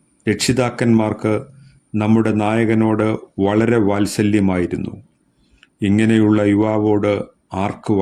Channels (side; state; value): both; identical; correlation 1.00